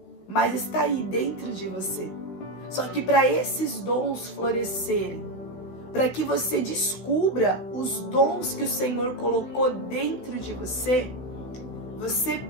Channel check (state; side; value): late; right; 16 ms